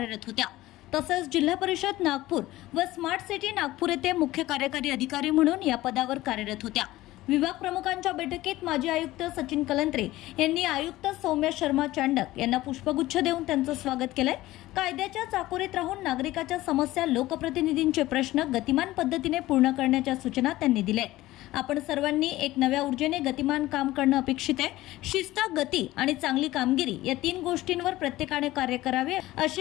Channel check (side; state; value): right; quieter; 16.9 dB